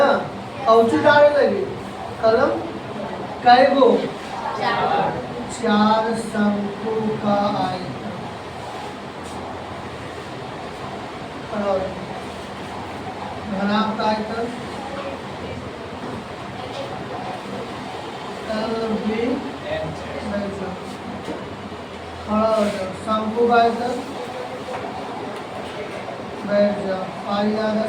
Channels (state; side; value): identical; both; correlation 1.00